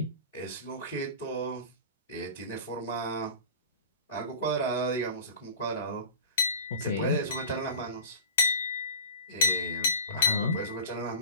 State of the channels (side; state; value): both; inverted; correlation -0.31